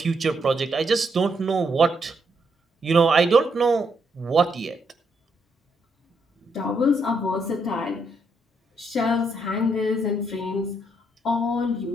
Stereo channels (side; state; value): both; normal; correlation 0.76